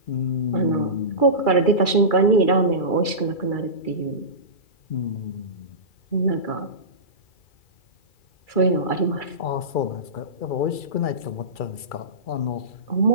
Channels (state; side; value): late; right; 2.3 ms